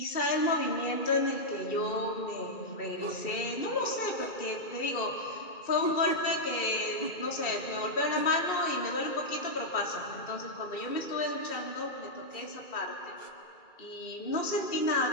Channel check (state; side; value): late; right; 2.3 ms